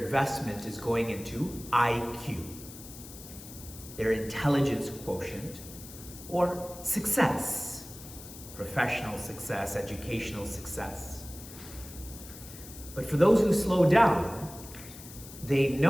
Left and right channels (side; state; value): left; noise; hiss, 15 dB below the sound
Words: is going into IQ, their intelligence quotient, or success, professional success, educational success. But for those who slow down, they